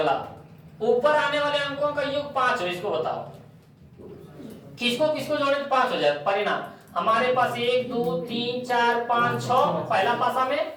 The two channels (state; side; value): identical; both; correlation 1.00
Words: ऊपर आने वाले अंकों का योग 5 हो, इसको बताओ। किसको जोड़े तो 5 हो जाए। परिणाम हमारे पास 1 2 3 4 5 6 पहला पासा में,